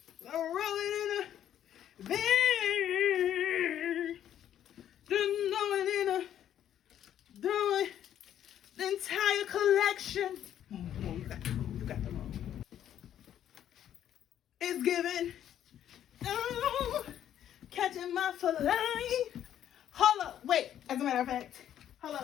roll it in the bag. Just throw it in the entire collection. Come on, you got the wrong. It's given. Oh, catching my fillet. Hold up. Wait. As a matter of fact. Hold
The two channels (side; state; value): right; quieter; 10.6 dB